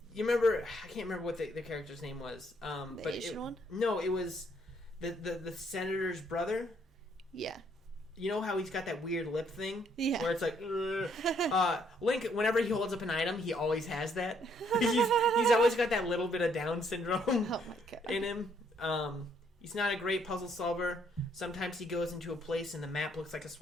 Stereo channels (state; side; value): normal; both; correlation 0.69